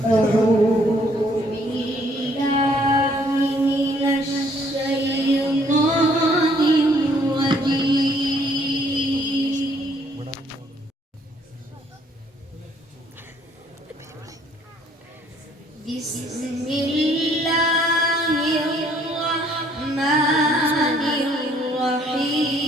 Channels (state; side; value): normal; both; correlation 0.64